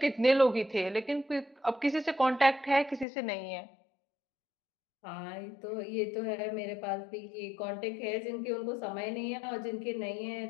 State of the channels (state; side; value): drops out; right; at 3.1 s